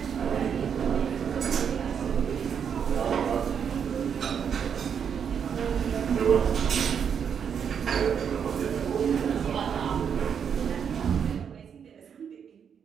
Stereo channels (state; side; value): quieter; left; 7.5 dB